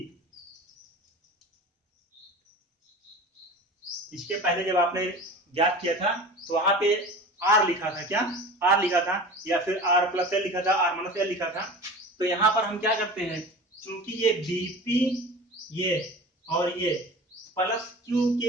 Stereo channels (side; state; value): both; normal; correlation 0.36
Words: इसके पहले जब आपने ज्ञात किया था तो वहां पे R लिखा था, क्या R लिखा था, या फिर R+L लिखा था, R-L लिखा था। तो यहां पर हम क्या करते हैं, चूंकि ये BP ये और ये प्लस Q